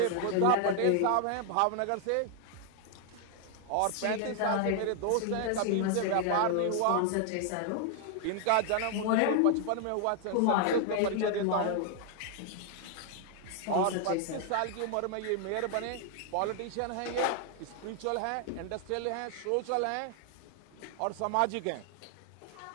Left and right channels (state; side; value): different; both; correlation 0.00